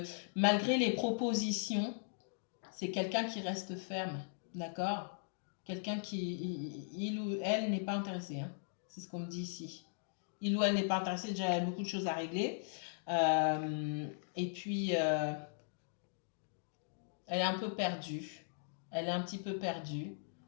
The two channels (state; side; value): silent; right; digital silence